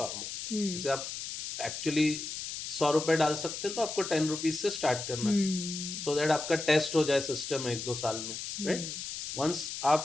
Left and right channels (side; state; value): left; noise; hiss, 6 dB below the sound